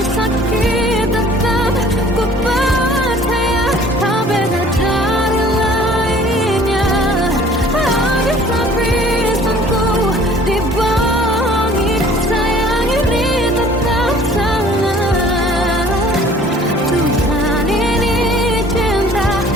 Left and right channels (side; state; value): both; normal; correlation 0.52